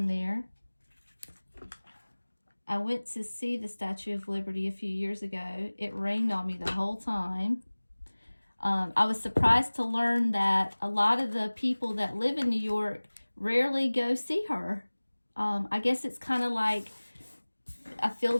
there. I went to see the Statue of Liberty a few years ago. It rained on me the whole time. I was surprised to learn that a lot of the people that live in New York rarely go see her. I guess it's kind of like a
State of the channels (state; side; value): inverted; both; correlation -1.00